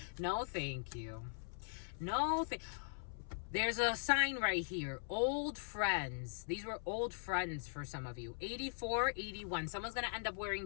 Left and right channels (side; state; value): right; silent; 51 dB below the other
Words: No, thank you. No, there's a sign right here. Old friends. These were old friends for some of you. 84, 81. Someone's going to end up wearing